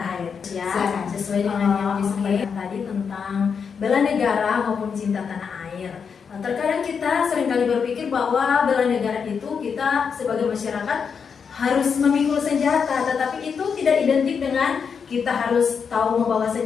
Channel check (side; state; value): right; quieter; 6.3 dB